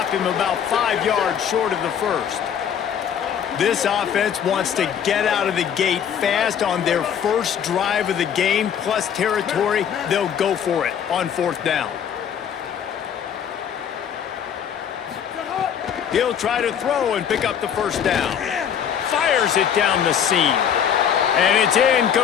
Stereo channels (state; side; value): quieter; right; 8.5 dB